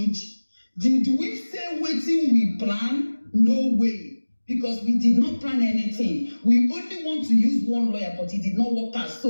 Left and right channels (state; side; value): inverted; both; correlation -1.00